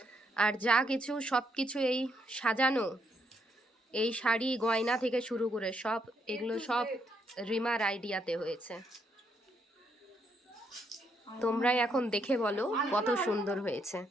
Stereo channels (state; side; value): normal; both; correlation 0.75